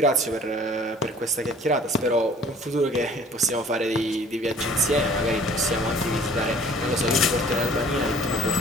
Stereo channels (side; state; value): both; normal; correlation 0.52